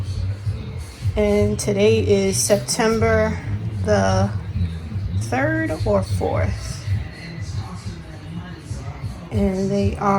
and today is September the 3rd or 4th. And they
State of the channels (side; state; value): both; identical; correlation 1.00